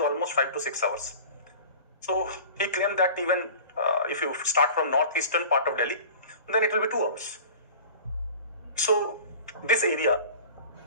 5 to 6 hours. So he claimed that even if you start from northeastern part of Delhi, then it will be 2 hours. So this area,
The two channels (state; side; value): inverted; both; correlation -0.40